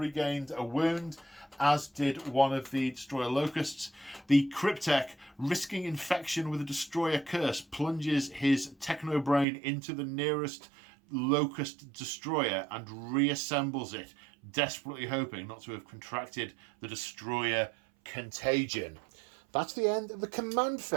a wound, as did one of the Destroyer Locusts. The Cryptek, risking infection with a Destroyer Curse, plunges his Technobrain into the nearest Locust Destroyer and reassembles it, desperately hoping not to have contracted the Destroyer Contagion. That's the end of the command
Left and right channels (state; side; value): drops out; left; at 9.5 s